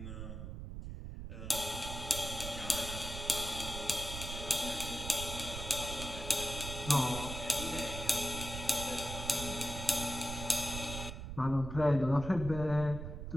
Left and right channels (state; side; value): noise; right; rumble, 7 dB below the sound